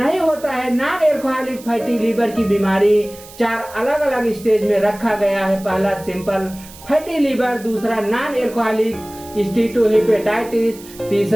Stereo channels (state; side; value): noise; right; hiss, 19 dB below the sound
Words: होता है। नॉन एल्कोहलिक फैटी लीवर की बीमारी 4 अलग अलग स्टेज में रखा गया है। पहला सिंपल फैटी लीवर, दूसरा नॉन एल्कोहलिक स्टीटोहेपेटाइटिस,